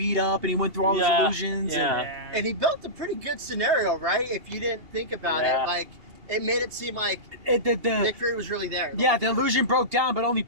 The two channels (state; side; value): late; left; 2.8 ms